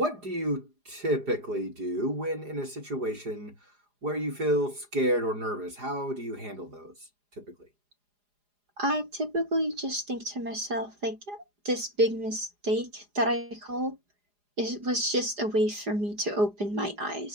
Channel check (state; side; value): late; left; 4.9 ms